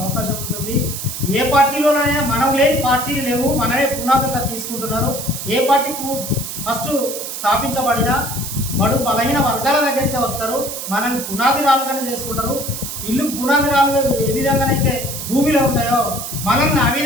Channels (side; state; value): right; noise; hiss, 7 dB below the sound